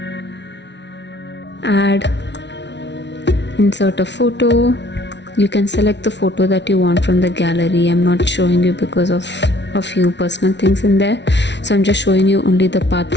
Add, insert a photo. You can select the photo that you want from the gallery. I'm not showing you because of a few personal things in there, so I'm just showing you only the part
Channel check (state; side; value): late; right; 0.51 ms